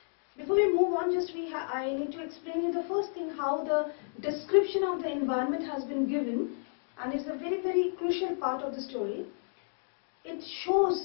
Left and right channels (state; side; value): silent; right; digital silence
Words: Before we move on, I need to explain you the first thing, how the description of the environment has been given, and it's a very, very crucial part of the story. It